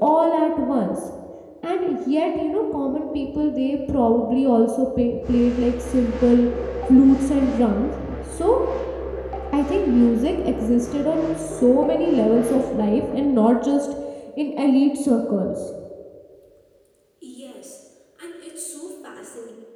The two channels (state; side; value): identical; both; correlation 1.00